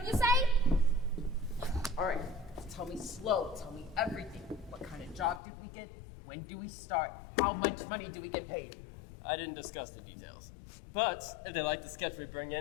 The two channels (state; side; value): drops out; right; at 5.4 s